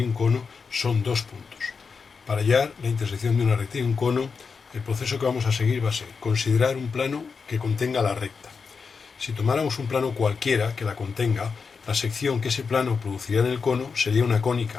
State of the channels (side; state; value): right; quieter; 5.3 dB